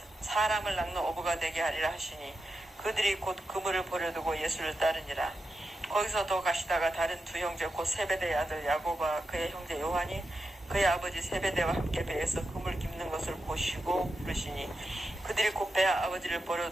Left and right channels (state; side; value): normal; both; correlation 0.89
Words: 사람을 낚는 어부가 되게 하리라 하시니 그들이 곧 그물을 버려두고 예수를 따르니라. 거기서 더 가시다가 다른 두 형제 곧 세베대의 아들 야고보와 그의 형제 요한이 그의 아버지 세베대와 함께 배에서 그물 깁는 것을 보시고 부르시니 그들이 곧 배 아버지를